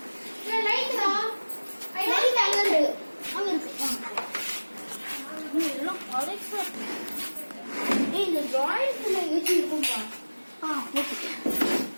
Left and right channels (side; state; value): both; inverted; correlation -1.00